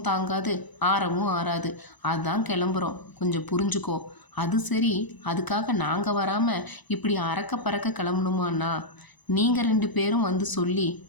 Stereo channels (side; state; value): right; late; 1.0 ms